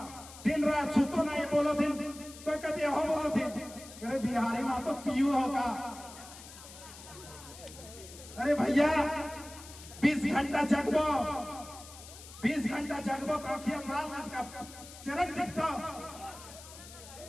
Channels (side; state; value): left; noise; hiss, 16 dB below the sound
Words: दिन रात सुतो नहीं बोलो दिन, कोई कहते हो बोलो दिन। अरे बिहारी में तो पीयू होगा। अरे भैया 20 घंटा जगबो, 20 घंटा जगबो तो अखियां लाल लाल का चरक दिखता।